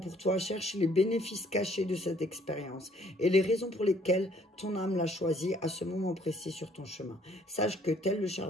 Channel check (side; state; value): both; normal; correlation 0.62